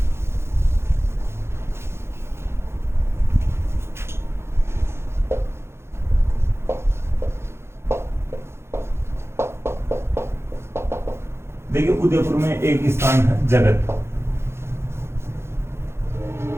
देखिए उदयपुर में एक स्थान है जगत।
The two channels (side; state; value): left; late; 0.12 ms